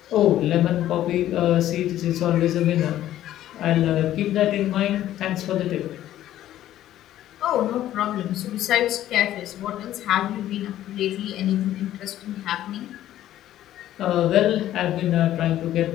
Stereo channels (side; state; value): right; quieter; 12.9 dB